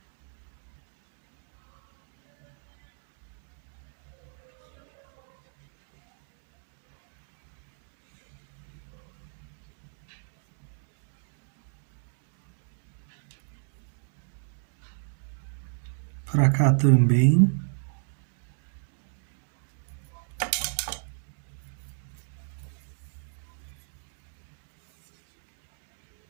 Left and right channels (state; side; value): silent; left; digital silence